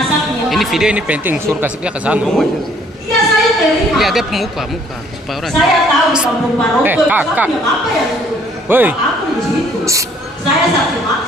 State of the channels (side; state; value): both; normal; correlation 0.61